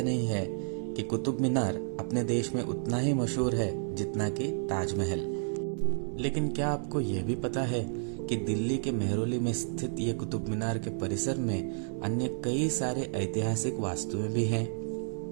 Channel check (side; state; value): left; silent; 57 dB below the other